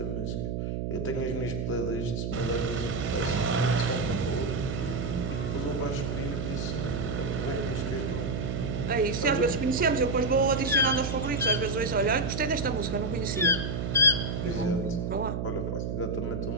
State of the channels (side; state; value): right; noise; hum, 2 dB below the sound